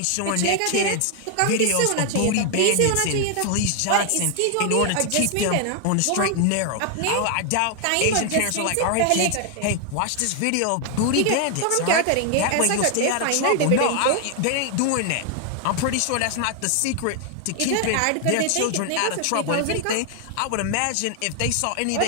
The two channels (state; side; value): different; both; correlation 0.00